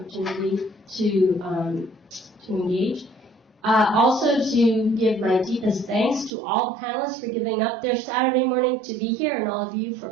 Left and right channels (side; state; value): left; drops out; at 6.3 s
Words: to engage. Also to give my deepest thanks to all panelists for giving up their Saturday morning to be here, and all of you